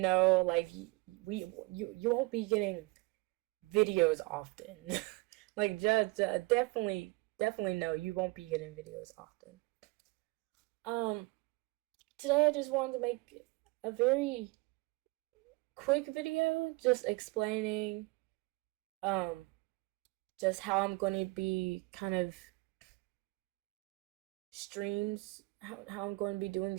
like, you won't be getting videos often. Like, just definitely no, you won't be getting videos often. Um, Today I just wanted to make a very quick video, just explaining um just how I'm going to be kind of streams, how I'm going to be doing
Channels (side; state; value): left; quieter; 25.3 dB